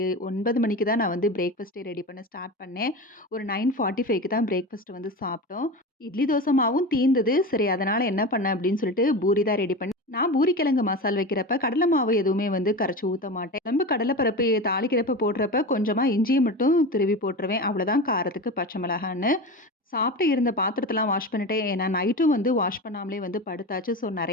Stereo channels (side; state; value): both; normal; correlation 0.26